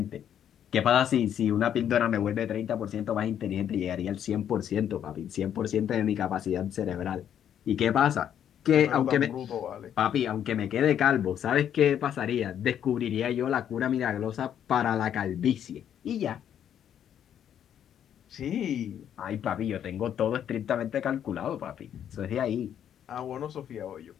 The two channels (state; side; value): quieter; right; 9.6 dB